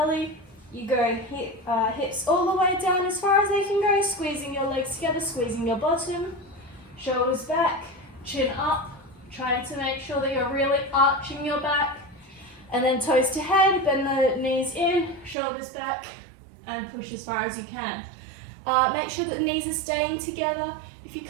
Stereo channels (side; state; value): left; drops out; at 15.4 s